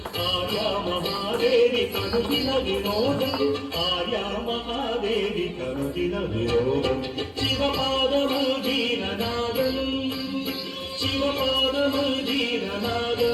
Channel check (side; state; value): both; identical; correlation 1.00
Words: ఆర్యా మహాదేవి కనుదిన వినోదం ఆర్యా మహాదేవి కనుదిన వినోదం శివపాదము జీరనాదం శివపాదము